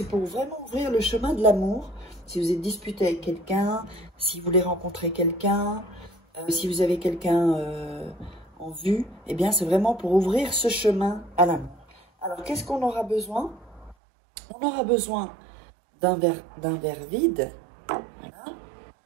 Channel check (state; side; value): drops out; left; at 14.0 s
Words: pour vraiment ouvrir le chemin de l'amour. Si vous êtes disputé avec quelqu'un, si vous voulez rencontrer quelqu'un, si vous avez quelqu'un en vue, eh bien c'est vraiment pour ouvrir ce chemin à l'amour. Alors qu'est-ce qu'on aura besoin? On aura besoin d'un verre vide. Voilà.